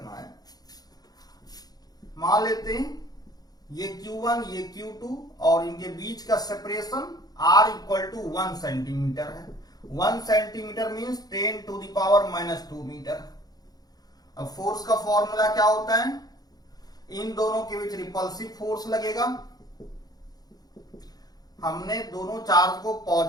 है। मान लेते हैं ये Q1 ये Q2 और इनके बीच का सेपरेशन R = 1 सेंटीमीटर है। 1 सेंटीमीटर मीन्स 10⁻⁻2 मीटर। अब फोर्स का फॉर्मूला क्या होता है, इन दोनों के बीच रिपल्सिव फोर्स लगेगा। हमने दोनों चार्ज को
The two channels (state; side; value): late; right; 0.19 ms